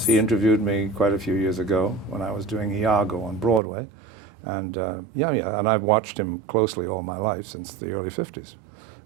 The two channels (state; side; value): drops out; left; at 3.6 s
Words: Yes, he interviewed me quite a few years ago when I was doing Iago on Broadway. And and I've watched him closely all my life since the early 50s